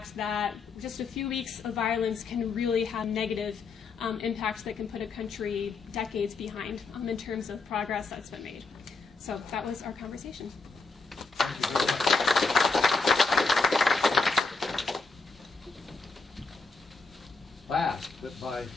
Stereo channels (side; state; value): right; quieter; 3.9 dB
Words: that just a few weeks of violence can really have negative impacts that can put a country decades behind in terms of progress that's been made. So that was our conversation. Last, but by